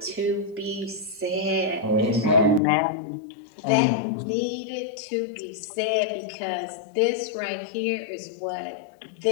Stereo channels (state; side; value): drops out; right; at 2.6 s